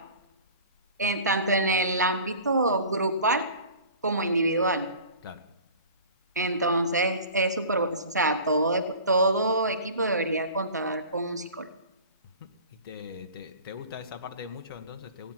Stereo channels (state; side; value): inverted; both; correlation -0.42